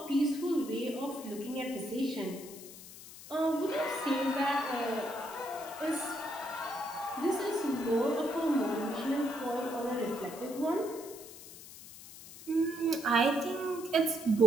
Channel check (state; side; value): noise; left; hiss, 16 dB below the sound